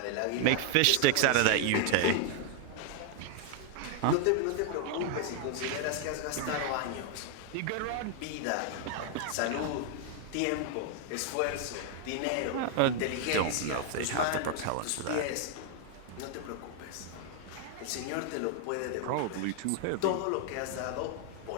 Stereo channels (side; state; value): both; different; correlation 0.00